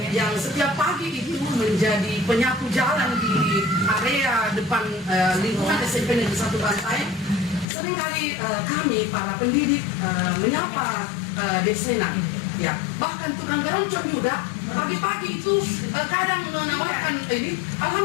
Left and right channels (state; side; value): drops out; right; at 7.7 s